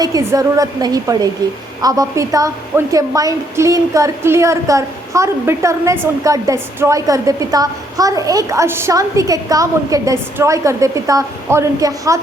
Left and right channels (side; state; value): both; normal; correlation 0.71